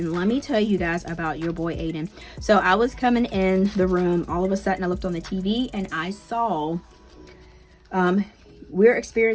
let me tell you guys about your boy Aiden. So I was coming in the room. All of a sudden, I looked on the TV and I saw, we're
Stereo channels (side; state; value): both; identical; correlation 1.00